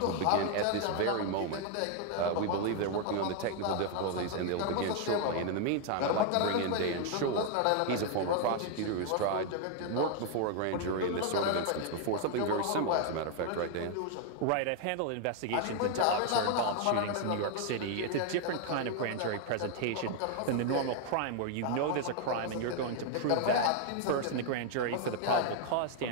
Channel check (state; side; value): different; both; correlation 0.00